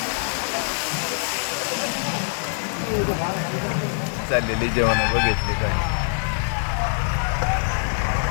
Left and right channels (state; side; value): silent; right; 63 dB below the other